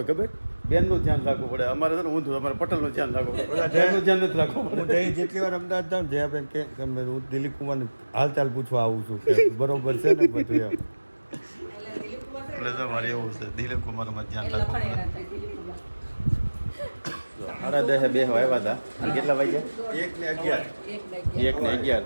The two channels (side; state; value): both; inverted; correlation -1.00